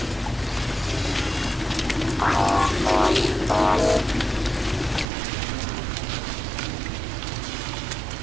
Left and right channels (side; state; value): left; drops out; at 5.1 s